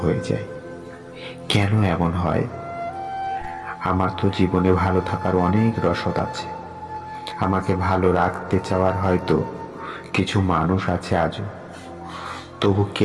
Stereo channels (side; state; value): both; identical; correlation 1.00